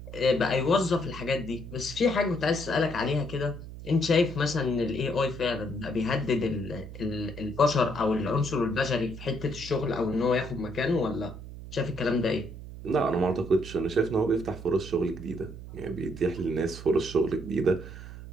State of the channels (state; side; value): noise; right; hum, 12 dB below the sound